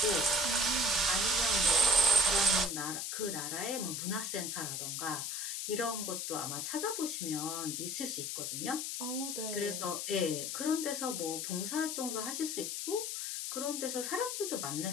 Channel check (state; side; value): noise; left; hiss, 3 dB below the sound